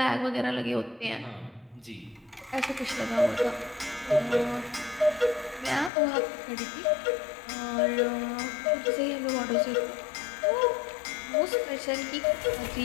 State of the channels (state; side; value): drops out; right; at 5.9 s